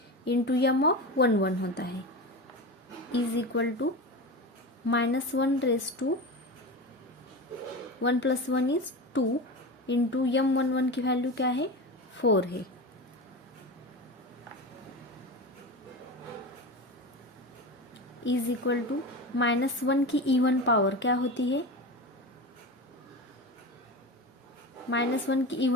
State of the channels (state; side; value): normal; both; correlation 0.25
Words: इंटू M11 होता है is equal to -1/1 + 1 is 2 into M11 की वैल्यू क्या है? 4 है. इज इक्वल टू -1 की इवन पावर क्या होती है? -1 की